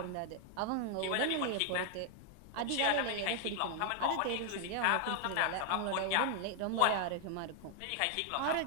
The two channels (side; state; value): both; different; correlation 0.00